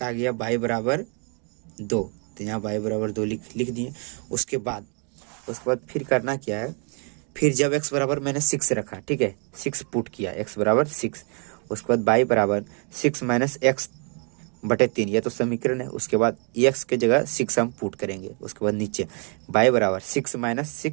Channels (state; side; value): quieter; left; 38.2 dB